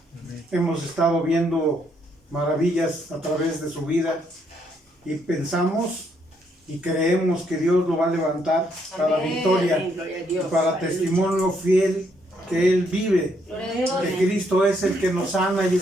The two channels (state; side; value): normal; both; correlation 0.73